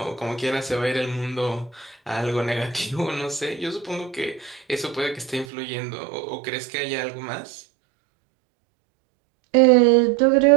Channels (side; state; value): left; drops out; at 5.5 s